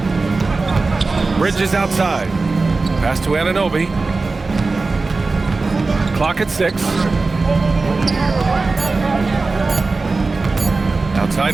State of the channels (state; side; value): quieter; left; 3.8 dB